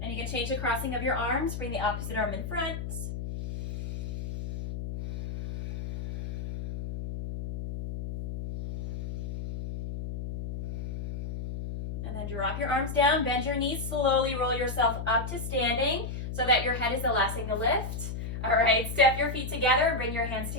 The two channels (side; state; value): left; noise; hum, 6 dB below the sound